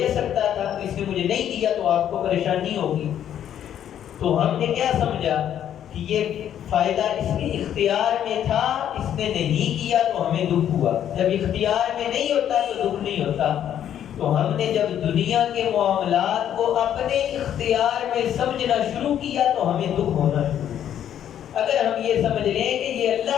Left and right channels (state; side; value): quieter; right; 10.2 dB